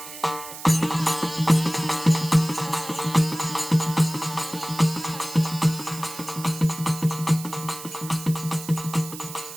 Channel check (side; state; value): right; noise; hiss, 12 dB below the sound